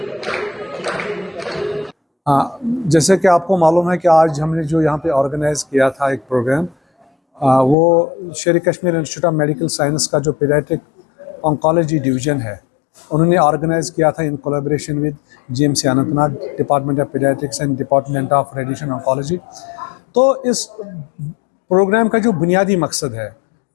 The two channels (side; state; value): right; drops out; at 7.8 s